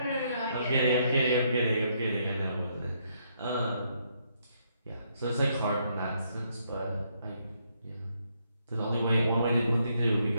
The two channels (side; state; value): both; inverted; correlation -0.74